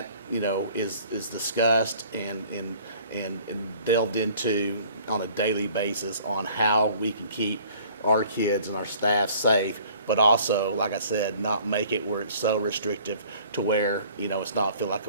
is discussed and delved into on a daily basis on how we can keep our kids and our staff safe, but also, like I said, not make it where it's so restrictive to where it's not feel like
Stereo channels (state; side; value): inverted; both; correlation -0.53